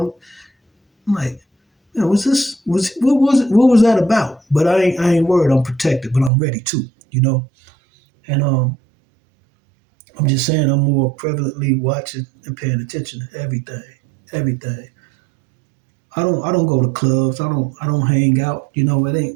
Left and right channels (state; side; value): drops out; left; at 6.3 s